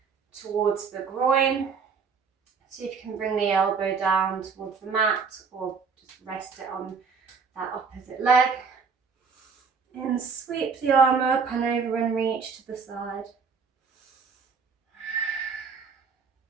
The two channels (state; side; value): quieter; left; 5.5 dB